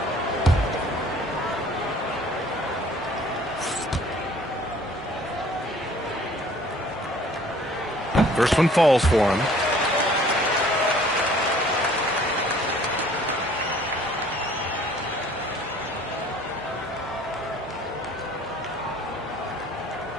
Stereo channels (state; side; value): normal; both; correlation 0.54